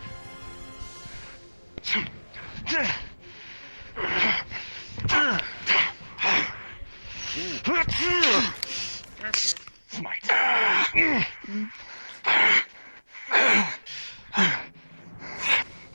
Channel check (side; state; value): both; inverted; correlation -1.00